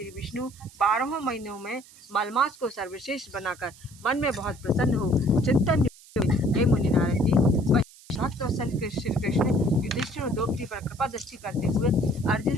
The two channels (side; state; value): right; noise; hiss, 23 dB below the sound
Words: विष्णु 12 महीनों में मलमास को सर्वश्रेष्ठ बनाकर मन में बहुत प्रसन्न हो चिंतन हे मुनि नारद जी, भक्त वत्सल श्री कृष्ण युधिष्ठिर और द्रौपदी पर कृपा दृष्टि करते हुए